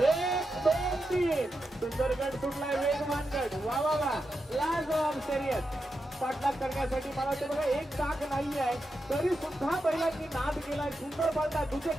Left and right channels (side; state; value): both; normal; correlation 0.88